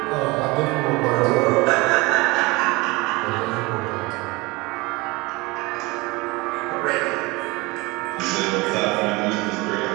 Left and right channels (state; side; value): quieter; left; 24.0 dB